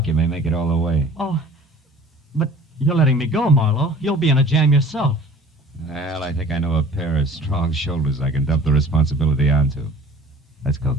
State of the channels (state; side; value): normal; both; correlation 0.47